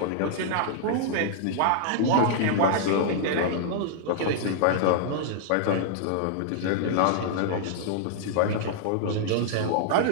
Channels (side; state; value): both; different; correlation -0.01